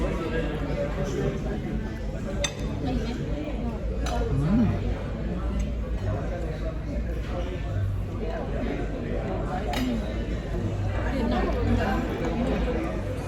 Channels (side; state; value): both; identical; correlation 1.00